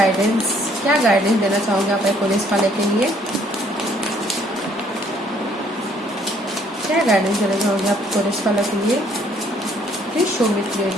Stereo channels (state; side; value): normal; both; correlation 0.63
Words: क्या गाइडेंस देना चाहोगे आप पुलिस वाले के लिए? क्या गाइडेंस देना चाहोगे आप कोरस वालों के लिए? Please show me